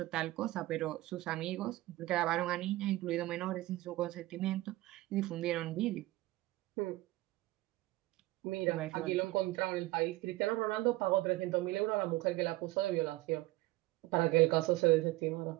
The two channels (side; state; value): left; quieter; 18.5 dB